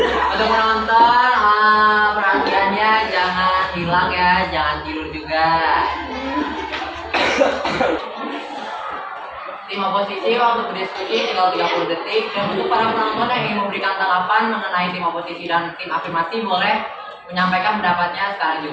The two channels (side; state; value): both; identical; correlation 1.00